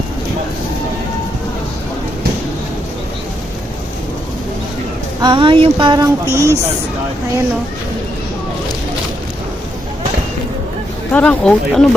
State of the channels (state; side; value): normal; both; correlation 0.79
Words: Ah, yung parang peas. Ayan o. Parang oat. Ano